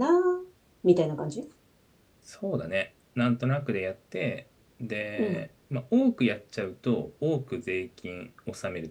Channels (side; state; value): both; identical; correlation 1.00